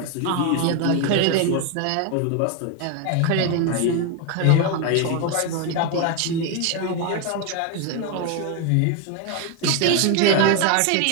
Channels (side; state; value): both; different; correlation 0.02